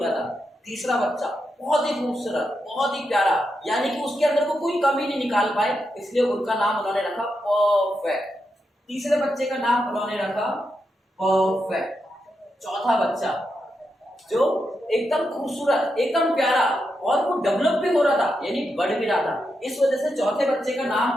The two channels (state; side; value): normal; both; correlation 0.85